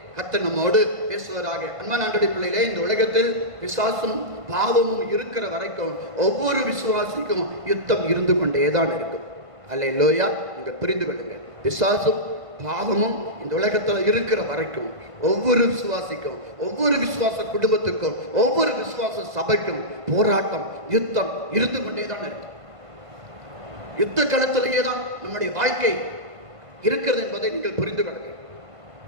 கர்த்தர் நம்மோடு பேசுவதாக. அன்பான ஆண்டவருடைய பிள்ளைகளே, இந்த உலகத்தில் பிசாசும் பாவமும் இருக்கிற வரைக்கும் ஒவ்வொரு விசுவாசிக்கும் யுத்தம் இருந்து கொண்டேதான் இருக்கும். அல்லேலூயா. நீங்க புரிந்து கொள்ளுங்க. பிசாசும் பாவமும் இந்த உலகத்தில் இருக்கிற வரைக்கும் ஒவ்வொரு விசுவாசிக்கும், ஒவ்வொரு விசுவாச குடும்பத்துக்கும், ஒவ்வொரு விசுவாச சபைக்கும் போராட்டம், யுத்தம் இருந்து கொண்டேதான் இருக்கும். யுத்த களத்திலேயே தான் நம்முடைய வாழ்க்கை இருக்கிறது என்பதை நீங்கள் புரிந்து கொள்ளுங்க.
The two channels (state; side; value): late; left; 1.5 ms